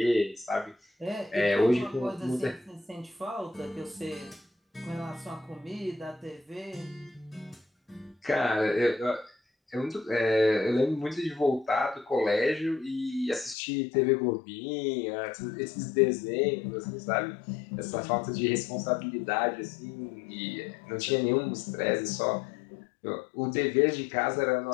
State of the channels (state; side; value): drops out; right; at 13.6 s